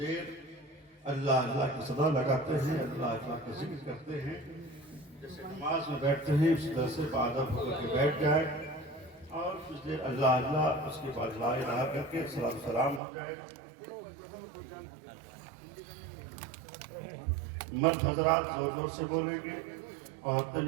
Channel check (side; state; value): left; drops out; at 13.0 s